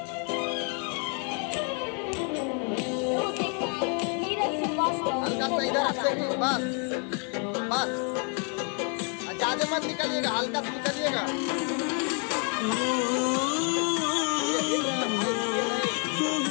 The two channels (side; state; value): right; quieter; 38.9 dB